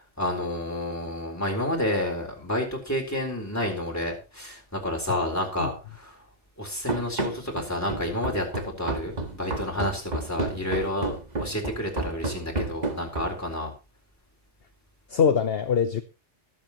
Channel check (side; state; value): both; normal; correlation -0.15